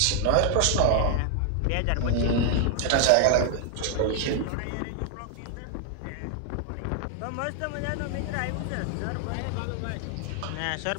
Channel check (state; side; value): different; both; correlation 0.00